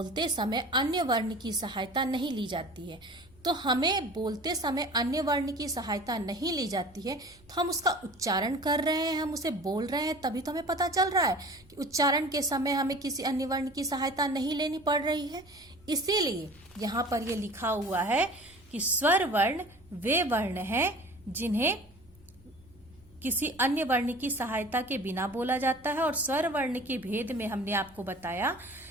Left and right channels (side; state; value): right; noise; hum, 27 dB below the sound